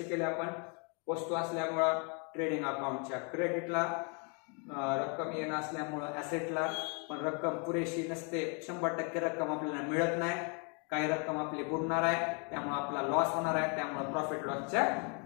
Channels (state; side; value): quieter; right; 36.6 dB